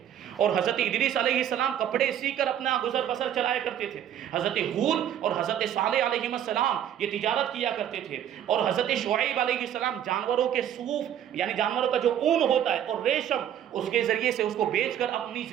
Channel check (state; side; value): quieter; left; 10.3 dB